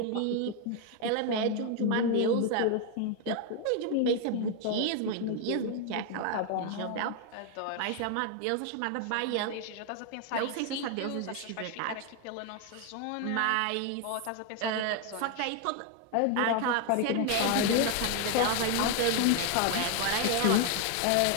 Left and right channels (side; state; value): both; different; correlation 0.01